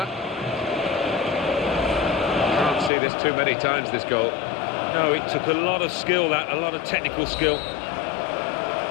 Can't see this too many times, this goal. No, it took a lot of skill, a lot of technical skill.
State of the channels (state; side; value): drops out; right; at 2.9 s